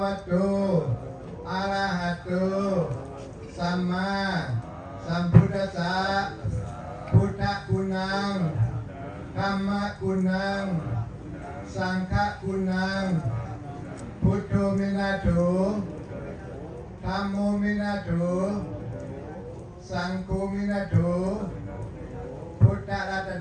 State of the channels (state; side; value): identical; both; correlation 1.00